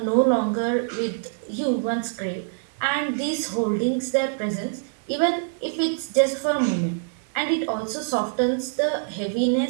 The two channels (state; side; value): silent; left; digital silence